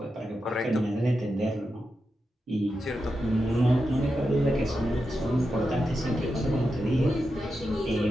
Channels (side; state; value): both; normal; correlation 0.88